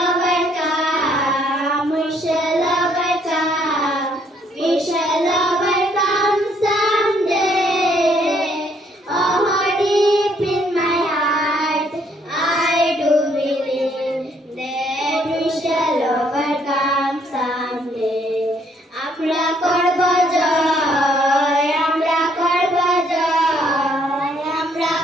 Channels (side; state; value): both; normal; correlation 0.67